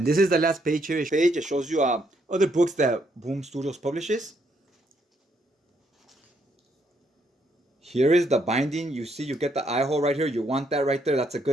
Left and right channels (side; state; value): both; normal; correlation 0.73